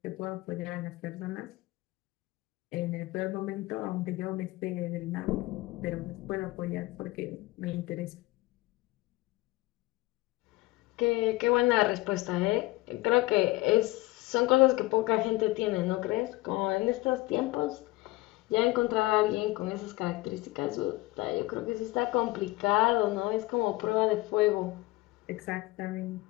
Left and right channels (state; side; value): quieter; right; 20.2 dB